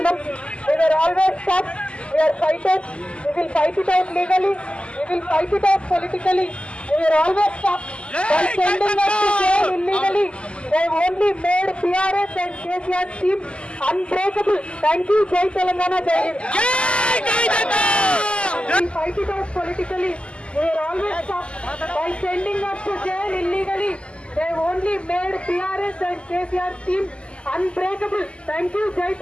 We are always tough, we are fighters. We will fight it out legally, we will fight it out politically. We are always tough. By sending us to jail illegally, they only made PRS and KCR's team unbreakable. Thank you. Jai Telangana, Jai Hind. We will fight it out politically. We are always tough. By sending us to jail illegally, they only made PRS and KCR's team unbreakable. Thank you. Jai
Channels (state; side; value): late; right; 0.053 ms